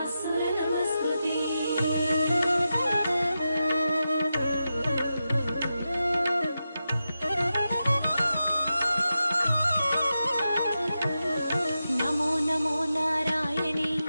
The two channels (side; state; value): both; inverted; correlation -0.90